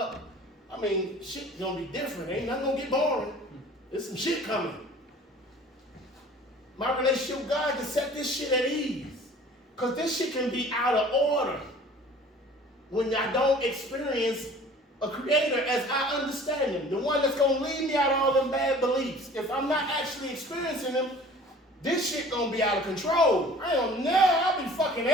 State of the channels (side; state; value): both; normal; correlation 0.47